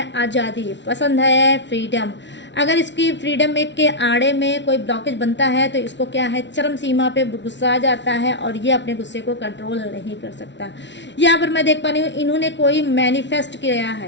आज़ादी, पसंद है फ्रीडम। अगर इसकी फ्रीडम के आड़े में कोई ब्लॉकेज बनता है तो इसको क्या है, चरम सीमा पे गुस्सा आ जाता है और ये अपने गुस्से को कंट्रोल नहीं कर सकता। यहाँ पर मैं देख पा रही हूँ, इन्होंने कोई मैनिफेस्ट किया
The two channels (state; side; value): late; right; 0.52 ms